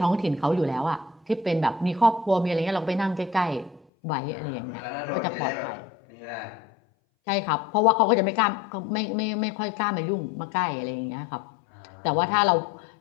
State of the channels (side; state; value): right; drops out; at 3.8 s